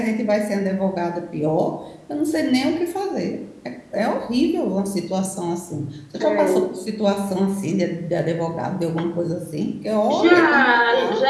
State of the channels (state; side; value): identical; both; correlation 1.00